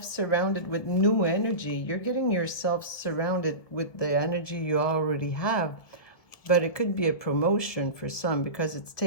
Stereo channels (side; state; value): right; late; 1.6 ms